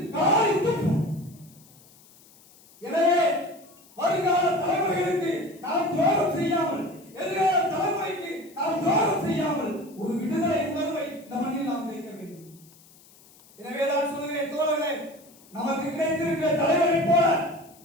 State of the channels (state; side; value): noise; left; hiss, 26 dB below the sound